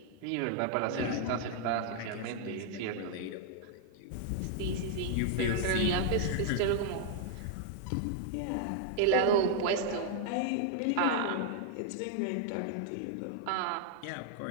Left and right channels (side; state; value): both; different; correlation -0.01